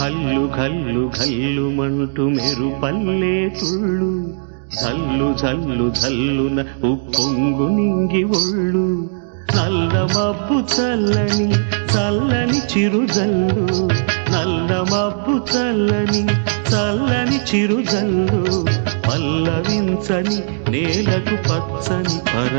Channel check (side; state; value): left; silent; digital silence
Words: కల్లు కల్లుమంటూ మెరుపల్లే తుళ్ళు జల్లు జల్లు జల్లున ఉప్పొంగు నింగి ఒళ్ళు నల్ల మబ్బు చల్లని చల్లని చిరుజల్లు నల్ల మబ్బు చల్లని చల్లని చిరుజల్లు పల్లవించని నేలకు పచ్చని